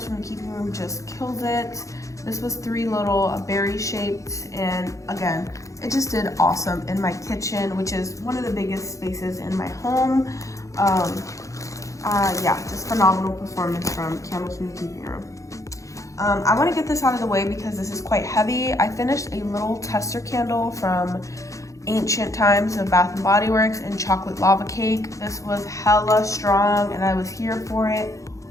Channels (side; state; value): right; late; 0.15 ms